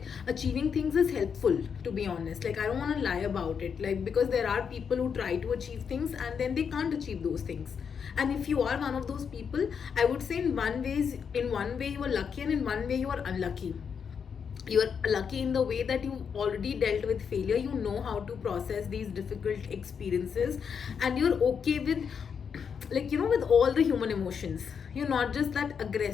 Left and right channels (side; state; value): right; quieter; 6.7 dB